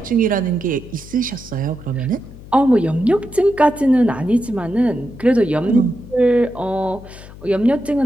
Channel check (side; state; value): left; noise; hum, 17 dB below the sound